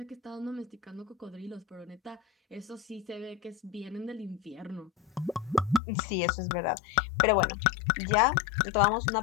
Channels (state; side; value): drops out; right; at 5.8 s